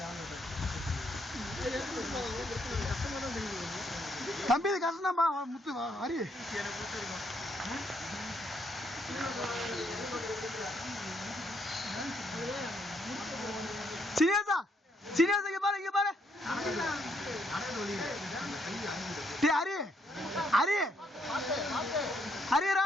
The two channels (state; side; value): normal; both; correlation 0.73